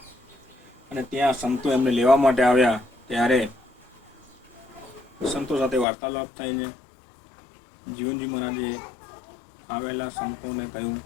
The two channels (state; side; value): drops out; right; at 5.9 s